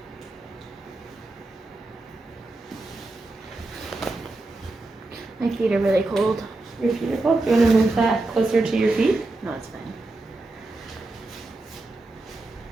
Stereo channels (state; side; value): quieter; left; 3.0 dB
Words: My feet are really cold. Your feet are cold. Do you want to move that closer to your feet? No, it's